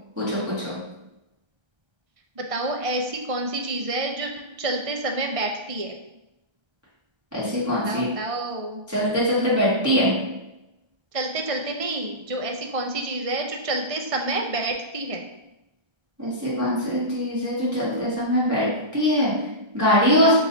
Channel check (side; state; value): left; late; 1.3 ms